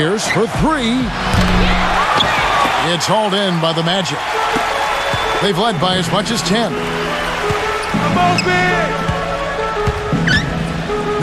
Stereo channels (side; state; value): both; identical; correlation 1.00